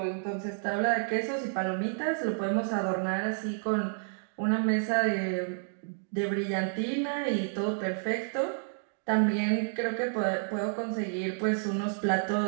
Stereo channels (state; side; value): silent; left; digital silence